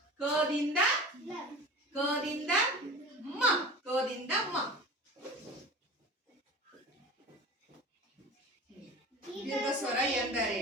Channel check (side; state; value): both; normal; correlation 0.35